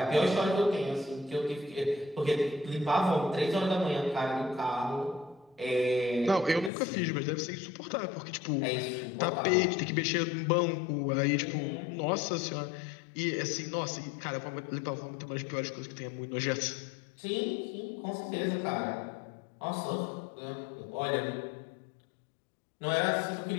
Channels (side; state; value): right; drops out; at 6.7 s